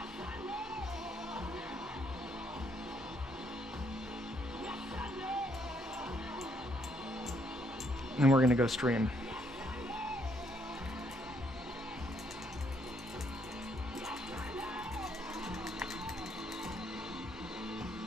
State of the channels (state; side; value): normal; both; correlation 0.71